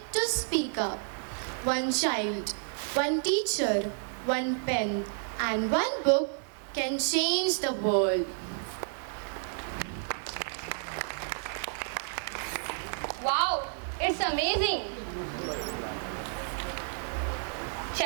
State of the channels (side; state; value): left; silent; digital silence